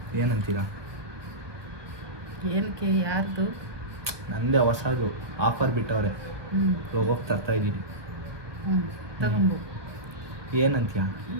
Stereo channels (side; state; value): left; late; 1.2 ms